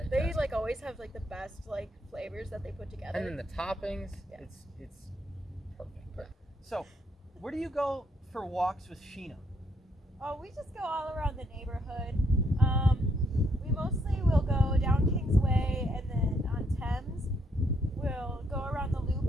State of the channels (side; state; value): both; normal; correlation 0.73